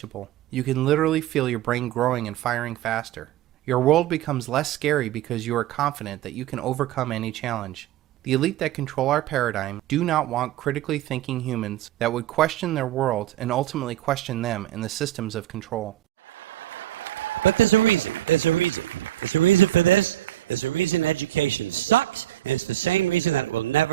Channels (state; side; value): quieter; left; 14.2 dB